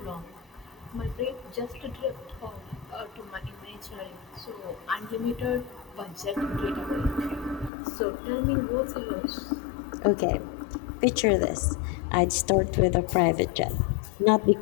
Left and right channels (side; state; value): right; drops out; at 7.7 s